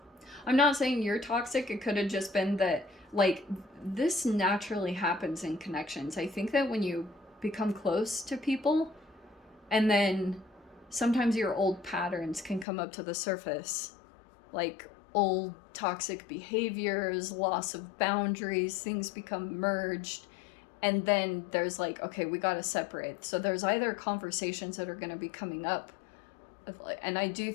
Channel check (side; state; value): right; drops out; at 12.7 s